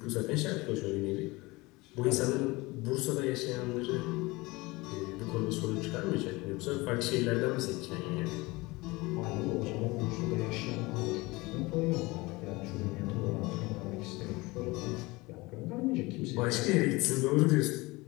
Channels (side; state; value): right; quieter; 22.8 dB